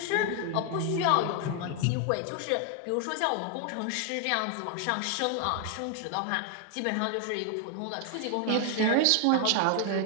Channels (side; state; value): both; different; correlation 0.00